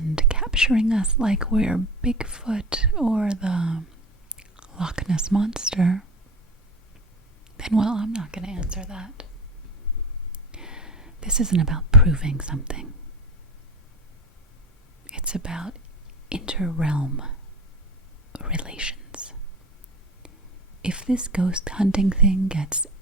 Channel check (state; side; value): normal; both; correlation 0.29